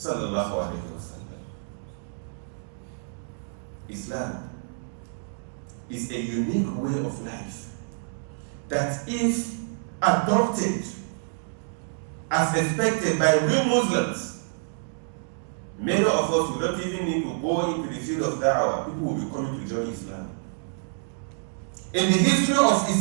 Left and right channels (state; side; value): silent; left; digital silence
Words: alaihi wasallam. Islam is a unique way of life that if adopted as expected by real Muslims, many of us will not even need to go into the field of da'wah. People will be coming to join Islam. In the history of